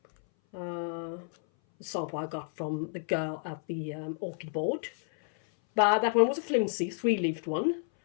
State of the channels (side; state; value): right; silent; 57 dB below the other